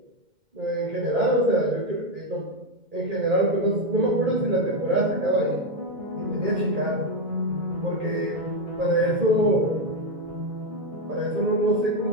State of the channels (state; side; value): late; left; 2.1 ms